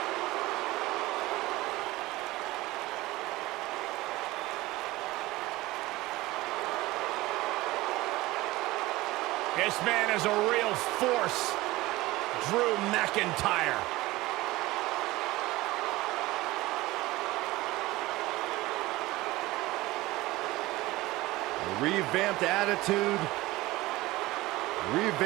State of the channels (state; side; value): quieter; left; 19.0 dB